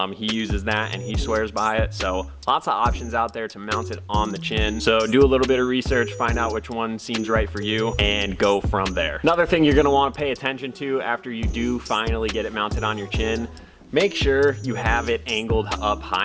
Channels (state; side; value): identical; both; correlation 1.00